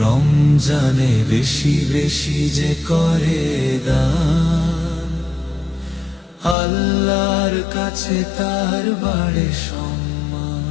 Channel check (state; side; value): drops out; right; at 6.6 s